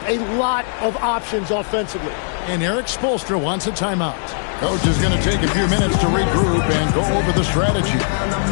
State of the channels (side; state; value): right; silent; digital silence